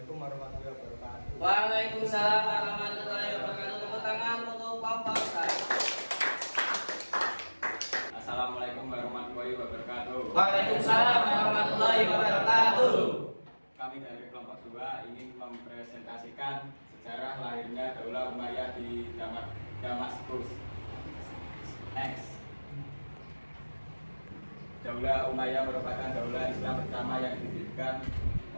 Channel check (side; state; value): both; inverted; correlation -1.00